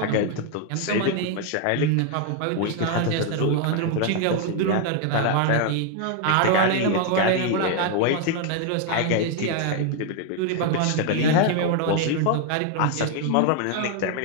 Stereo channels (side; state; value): both; different; correlation 0.01